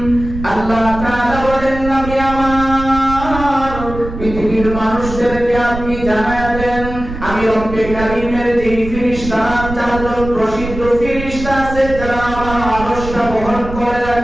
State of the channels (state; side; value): noise; right; rumble, 9 dB below the sound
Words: আল্লাহ তাআলা বলেন, নবী আমার, পৃথিবীর মানুষদেরকে আপনি জানায়া দেন, আমি রব্বে কারীমের যে ফেরেশতা, চারজন প্রসিদ্ধ ফেরেশতা আছে যারা আমার আরশটা বহন করে